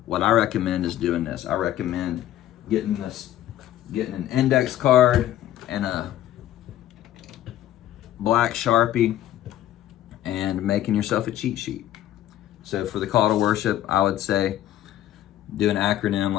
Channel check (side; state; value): right; quieter; 12.8 dB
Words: what I recommend is doing this. I recommend getting an index card and a black Sharpie and making yourself a cheat sheet. So for the call to worship, I would say do an acronym